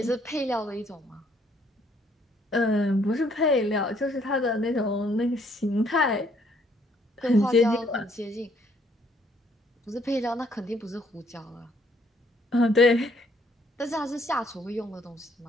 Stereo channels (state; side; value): normal; both; correlation 0.66